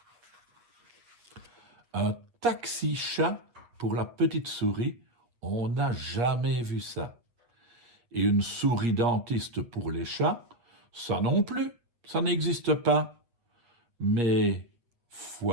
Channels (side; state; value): left; late; 8.2 ms